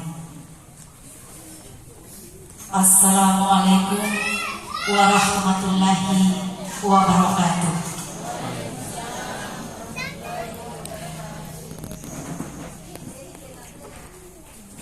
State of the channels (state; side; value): identical; both; correlation 1.00